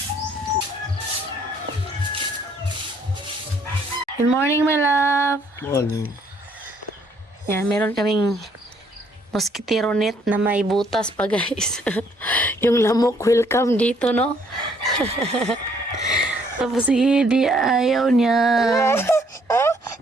Good morning, my love. Morning. Yan, meron kaming mosquito net na may butas pa, guys. Yung lamok, welcome dito, no? Tapos hindi ayaw niya.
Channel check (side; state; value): both; normal; correlation 0.65